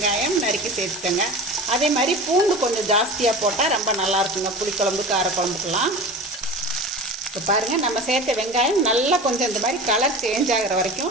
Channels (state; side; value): normal; both; correlation 0.33